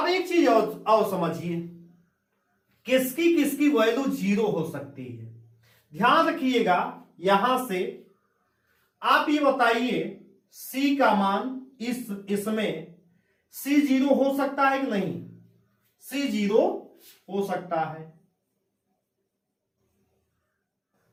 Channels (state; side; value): identical; both; correlation 1.00